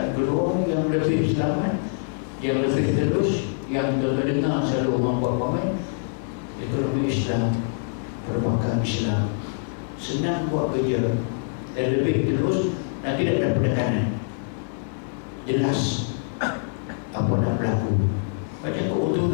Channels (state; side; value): silent; right; digital silence